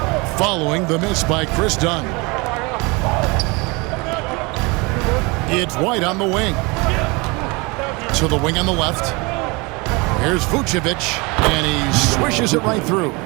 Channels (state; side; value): quieter; left; 26.9 dB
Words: following the miss by Chris Dunn. It's White on the wing. To the wing on the left. Here's Vucevic, and he swishes it right through.